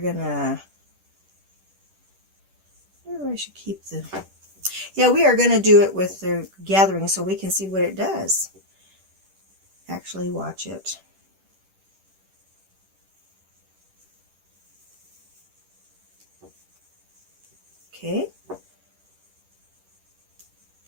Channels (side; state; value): left; late; 10 ms